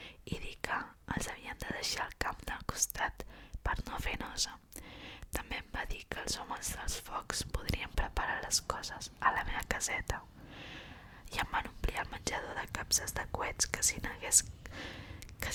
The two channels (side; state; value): both; identical; correlation 1.00